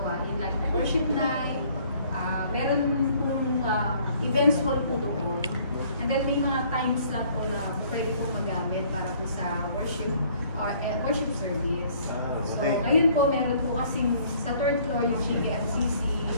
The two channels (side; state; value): both; inverted; correlation -0.59